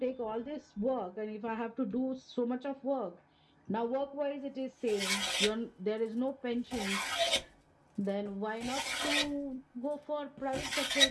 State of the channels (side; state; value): both; identical; correlation 1.00